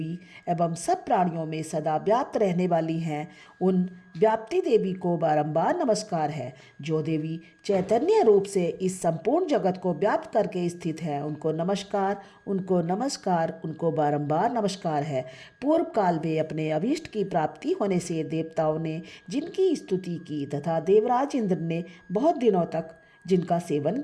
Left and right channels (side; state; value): both; identical; correlation 1.00